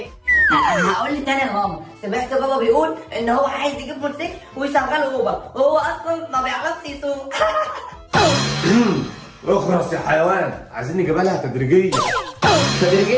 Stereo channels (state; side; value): identical; both; correlation 1.00